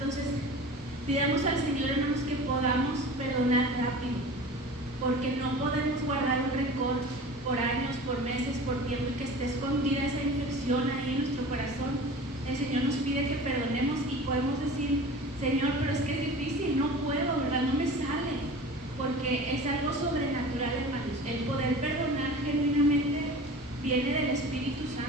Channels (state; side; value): normal; both; correlation 0.37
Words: pidamos al Señor, hermanos, que podamos perdonar rápido, porque no podemos guardar un rencor por años, por meses, por tiempo, y que esté escondida esa infección ahí en nuestro corazón. El Señor nos pide que perdonemos y podemos decir: Señor, pero es que es difícil, no puedo, ¿verdad? No me sale, porque es algo sobrenatural, hermanos. El poder perdonar genuinamente viene del Espíritu